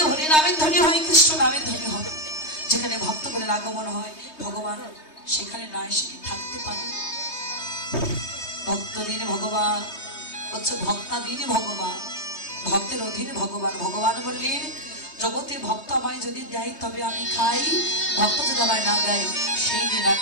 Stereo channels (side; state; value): right; late; 3.2 ms